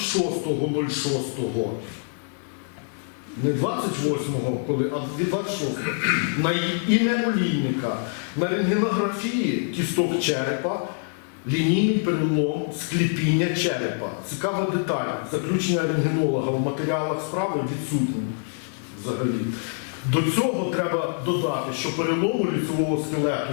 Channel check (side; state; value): right; silent; 62 dB below the other